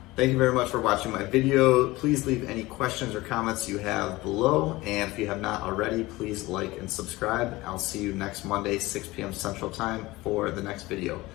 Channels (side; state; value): right; quieter; 19.9 dB